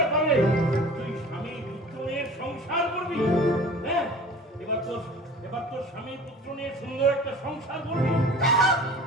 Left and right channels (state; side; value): normal; both; correlation 0.42